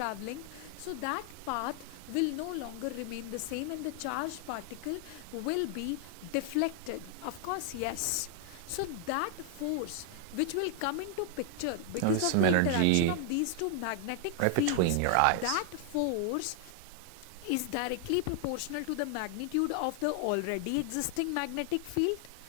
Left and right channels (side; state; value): both; different; correlation 0.00